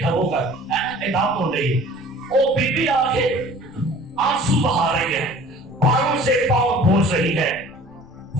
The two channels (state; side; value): noise; left; rumble, 25 dB below the sound